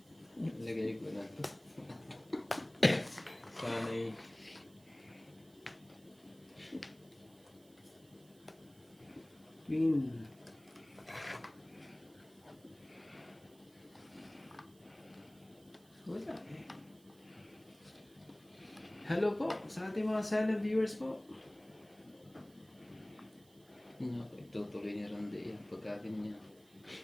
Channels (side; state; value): right; noise; hiss, 27 dB below the sound